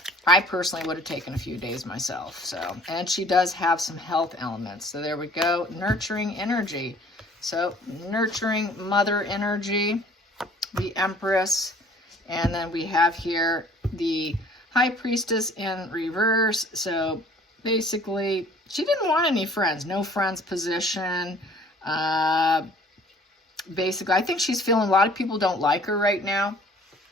I personally would have taken a few days myself. So, and she does have some health elements. So there we go, nurturing energy. So nurturing mother energy, the Empress, and then we have here the High Priestess in reverse. So basically, she didn't want any friends. No friends position. Basically, I think she's feeling a lot of people don't like her right now.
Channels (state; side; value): normal; both; correlation 0.53